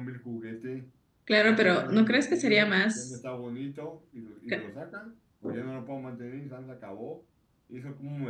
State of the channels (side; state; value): both; identical; correlation 1.00